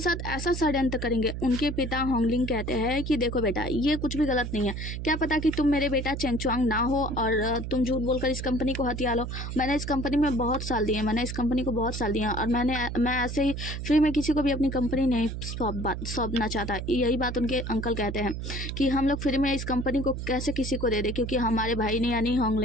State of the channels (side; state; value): right; noise; hum, 5 dB below the sound